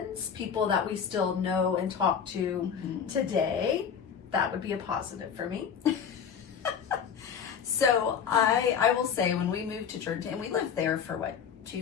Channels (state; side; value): quieter; right; 7.4 dB